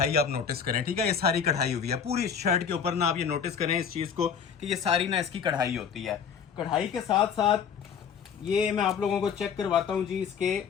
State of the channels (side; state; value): right; quieter; 7.1 dB